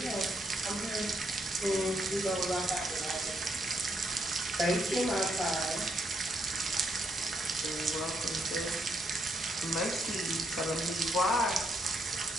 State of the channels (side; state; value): both; normal; correlation 0.76